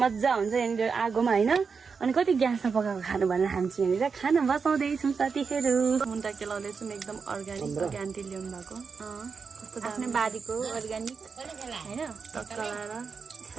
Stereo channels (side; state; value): left; quieter; 5.4 dB